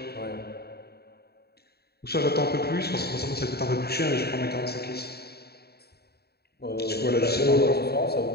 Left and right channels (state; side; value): late; right; 0.46 ms